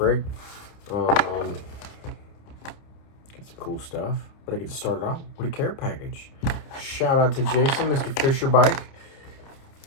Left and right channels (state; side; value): late; right; 29 ms